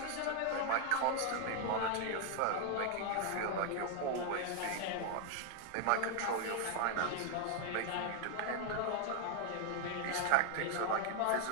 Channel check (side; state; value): both; different; correlation 0.00